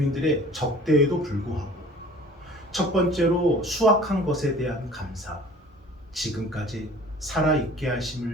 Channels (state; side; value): normal; both; correlation 0.47